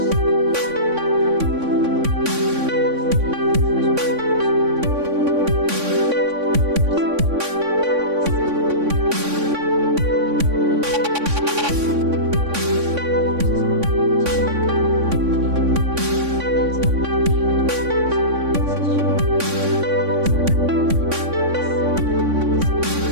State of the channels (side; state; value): left; late; 3.6 ms